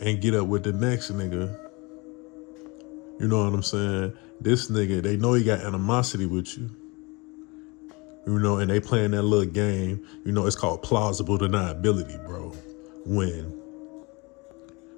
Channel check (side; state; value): right; quieter; 26.8 dB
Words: get up with the next nigga. You know what I'm saying? This nigga, they know he got animosity with you. You know, and they playing that little game. You know, it's called plausible deniability, bro. When